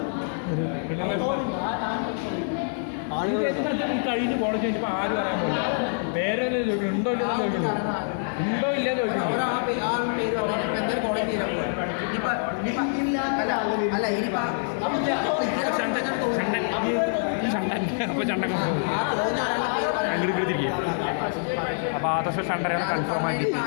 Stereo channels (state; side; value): silent; right; digital silence